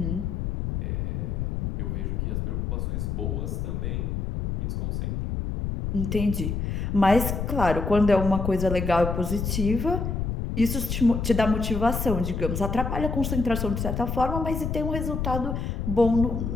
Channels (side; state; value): left; noise; rumble, 2 dB below the sound